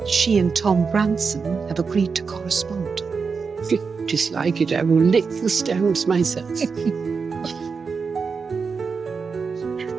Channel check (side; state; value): left; quieter; 5.2 dB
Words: she and Tom Branson have agreed to correspond. Dislike it, I will lick the stones myself.